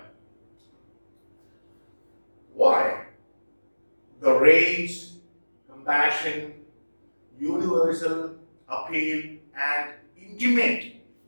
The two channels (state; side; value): inverted; both; correlation -1.00